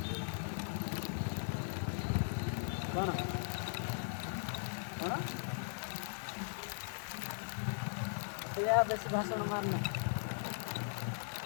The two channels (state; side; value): silent; right; digital silence